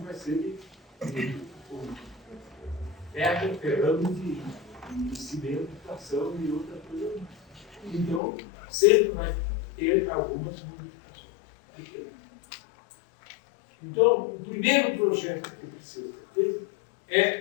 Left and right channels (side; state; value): right; drops out; at 8.2 s